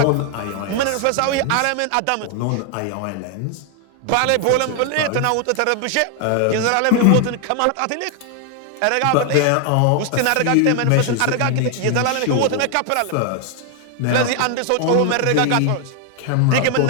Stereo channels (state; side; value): different; both; correlation 0.00